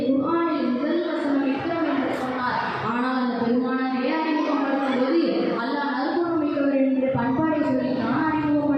குர்ஆனில் முதல் வசனம் இக்ரம் என்று சொன்னார். ஆனால் அந்த பெருமானாரை அறிமுகப்படுத்தும் போது அல்லாஹ் நற்குணம் மிக்கவர் என்று பண்பாடை சொல்லி தான்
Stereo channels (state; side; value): identical; both; correlation 1.00